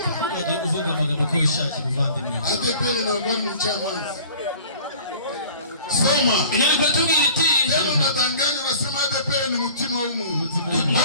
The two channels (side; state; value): both; inverted; correlation -0.47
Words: Ujye uvuga amagambo ko ushaka muvandimwe. ADPR ntabwo ari mucamanza. Soma. Inyandiko tubwira iti Tena unadanganya unasema ADPR ni mutima w'umuntu.